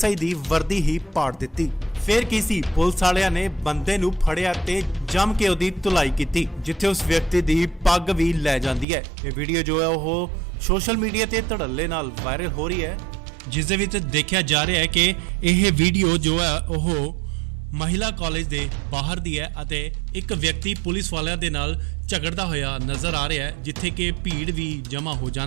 ਦੀ ਵਰਦੀ ਹੀ ਪਾੜ ਦਿੱਤੀ। ਫਿਰ ਕੀ ਸੀ, ਪੁਲਿਸ ਵਾਲਿਆਂ ਨੇ ਬੰਦੇ ਨੂੰ ਫੜਿਆ ਤੇ ਜੰਮ ਕੇ ਉਹਦੀ ਧੁਲਾਈ ਕੀਤੀ, ਜਿੱਥੇ ਉਸ ਵਿਅਕਤੀ ਦੀ ਪੱਗ ਵੀ ਲੈ ਜਾਂਦੀ ਹੈ। ਇਹ ਵੀਡੀਓ ਜੋ ਹੈ ਉਹ ਸੋਸ਼ਲ ਮੀਡੀਆ ਤੇ ਧੜੱਲੇ ਨਾਲ ਵਾਇਰਲ ਹੋ ਰਹੀ ਹੈ, ਜਿਸ ਦੇ ਵਿੱਚ ਦੇਖਿਆ ਜਾ ਰਿਹਾ ਹੈ ਕਿ ਇਹ ਵੀਡੀਓ ਜੋ ਹੈ ਉਹ ਮਹਿਲਾ ਕਾਲਜ ਦੇ ਬਾਹਰ ਦੀ ਹੈ ਅਤੇ ਇੱਕ ਵਿਅਕਤੀ ਪੁਲਿਸ ਵਾਲਿਆਂ ਦੇ ਨਾਲ ਝਗੜਦਾ ਹੋਇਆ ਨਜ਼ਰ ਆ ਰਿਹਾ ਹੈ, ਜਿੱਥੇ ਕਿ ਭੀੜ ਵੀ ਜਮ੍ਹਾਂ ਹੋ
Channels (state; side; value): drops out; left; at 8.8 s